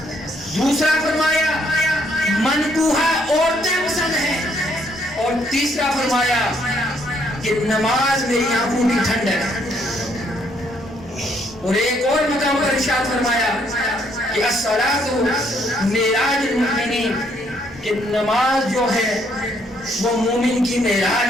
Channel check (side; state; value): both; normal; correlation 0.69